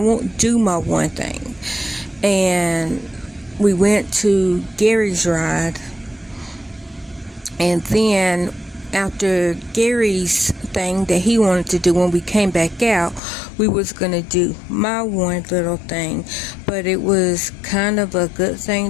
do my one thing. And we went to Gary's ride, and then after Gary's thing that he wanted to do, when we came back out, we was gonna do my one little thing, but it was kind of a good thing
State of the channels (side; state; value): right; drops out; at 13.2 s